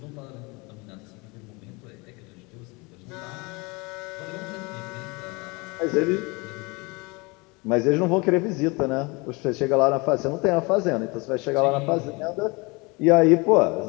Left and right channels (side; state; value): right; quieter; 27.2 dB